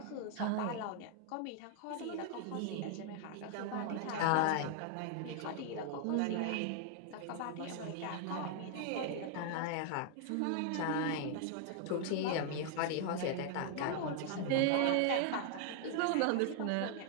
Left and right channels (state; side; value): different; both; correlation 0.00